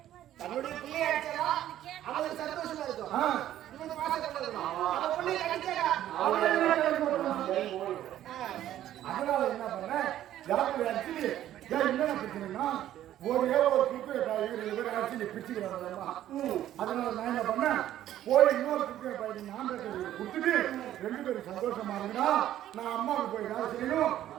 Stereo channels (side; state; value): left; quieter; 12.4 dB